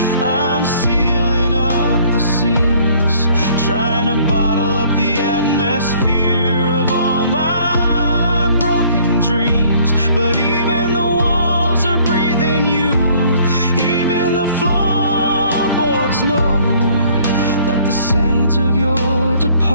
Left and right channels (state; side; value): inverted; both; correlation -0.59